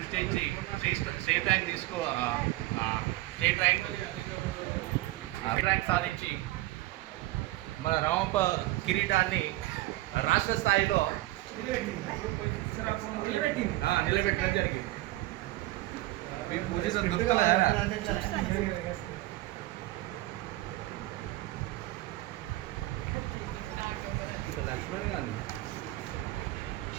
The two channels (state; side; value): quieter; left; 18.1 dB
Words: స్టేట్ ర్యాంక్ సాధించి మన రామప్ప కిరీటాన్ని రాష్ట్ర స్థాయిలో నిలబెట్టడం జరిగింది. లక్ష్మణ్ గాంధీ